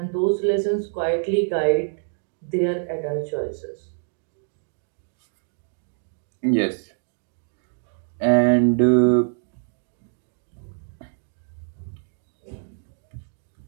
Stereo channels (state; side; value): silent; left; digital silence